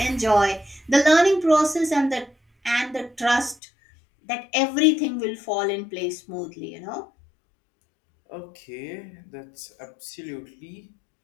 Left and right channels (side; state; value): right; drops out; at 3.6 s